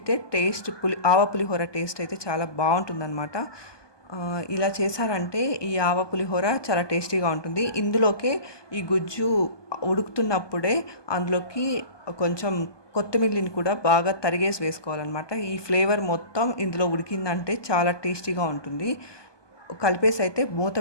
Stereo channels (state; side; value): late; right; 1.2 ms